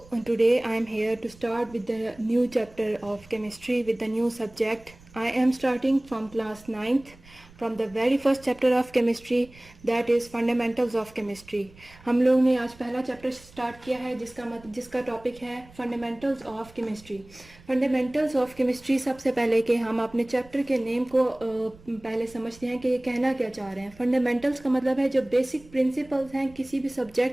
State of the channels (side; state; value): right; noise; rumble, 24 dB below the sound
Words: today I am here to start with the new chapter of chemistry with the new subject. I am starting from class 9th from the very first chapter of chemistry, that is fundamentals of chemistry. हम लोग ने आज पहला chapter start किया है जिसका topic है fundamentals of chemistry. Fundamentals of chemistry, सबसे पहले कि हम अपने चैप्टर के नेम को पहले समझते हैं कि ये कहना क्या चाह रहे हैं. फंडामेंटल्स का मतलब है जो बेसिक प्रिंसिपल्स हैं किसी भी